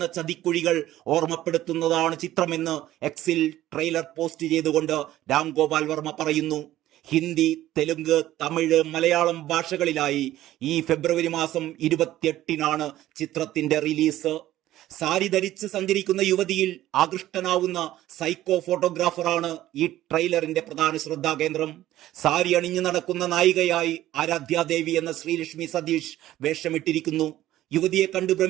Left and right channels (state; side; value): quieter; left; 14.2 dB